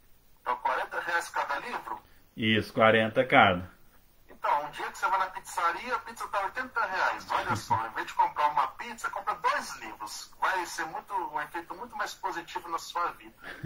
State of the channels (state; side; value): identical; both; correlation 1.00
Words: Então, R$40 cada livro? Isso, 40 cada. Então, um dia que você vai na pizzaria, a pizza está R$80. Olha só, em vez de comprar uma pizza, compra 2 livros. Vai ser um efeito muito mais positivo na sua vida.